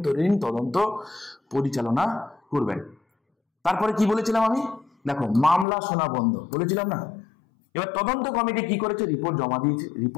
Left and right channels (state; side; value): drops out; right; at 5.7 s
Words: তদন্ত পরিচালনা করবেন। তারপরে কি বলেছিলাম আমি, দেখো মামলা শোনা বন্ধ বলেছিলাম না। এবার তদন্ত কমিটি কি করেছে, রিপোর্ট জমা দিয়েছে।